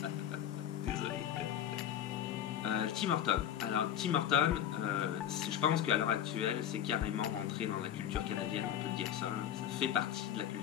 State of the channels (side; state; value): right; quieter; 10.4 dB